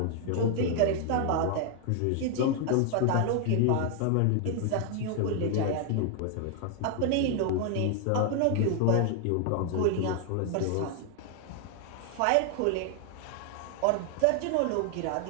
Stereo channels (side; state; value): both; different; correlation 0.00